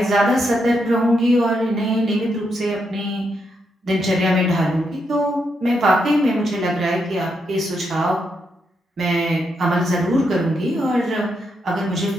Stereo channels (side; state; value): both; normal; correlation 0.81